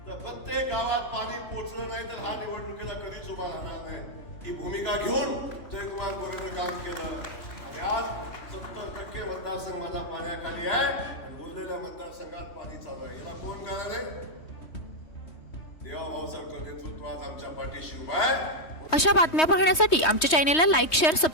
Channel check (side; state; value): right; late; 3.2 ms